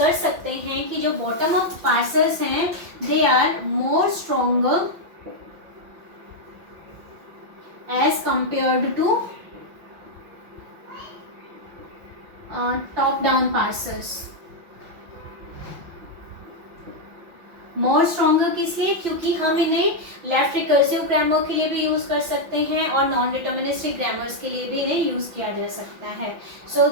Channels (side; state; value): left; late; 5.9 ms